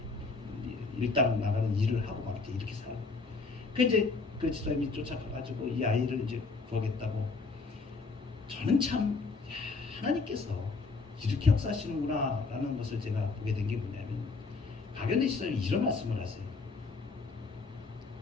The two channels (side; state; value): right; quieter; 4.2 dB